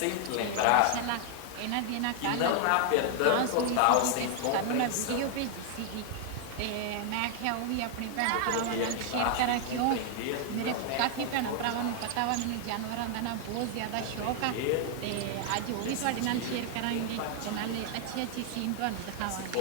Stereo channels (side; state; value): both; different; correlation 0.00